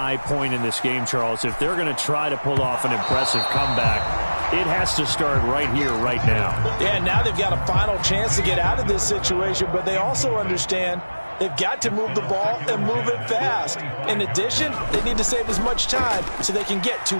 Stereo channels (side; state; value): both; inverted; correlation -1.00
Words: point in this game, Charles. If they're going to try to pull off an impressive comeback, it has to start right here, right now. Yeah, now they've got a final chance to get out of this situation, but they also understand they've got to move the ball and move it fast. In addition, they need to save as much time so they can get 2